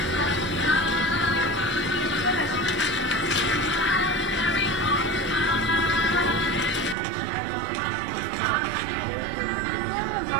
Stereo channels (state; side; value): drops out; left; at 7.0 s